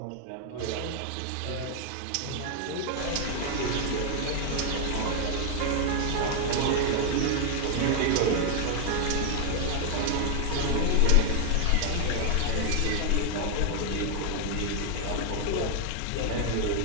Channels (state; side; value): different; both; correlation 0.00